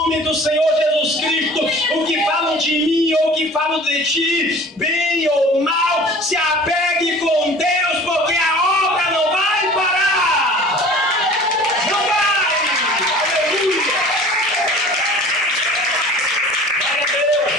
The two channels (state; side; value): normal; both; correlation 0.45